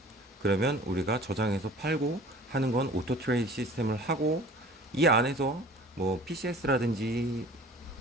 그러면 우리가 저장해서 팔고 하는 건 오토 트레이드 시스템을 하고, 이 안에서 PCS라든지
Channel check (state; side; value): normal; both; correlation 0.45